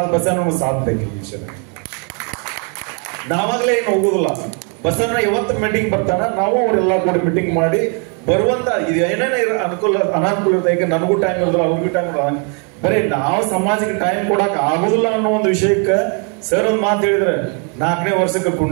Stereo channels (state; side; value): quieter; left; 38.4 dB